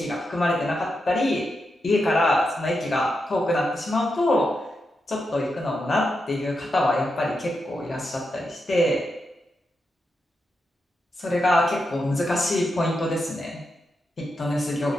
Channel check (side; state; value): both; normal; correlation 0.86